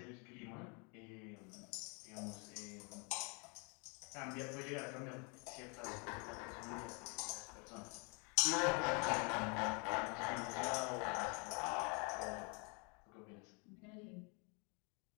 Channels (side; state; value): right; quieter; 33.9 dB